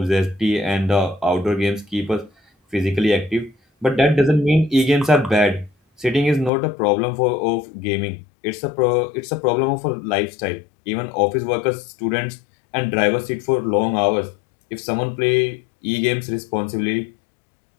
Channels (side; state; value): right; drops out; at 6.5 s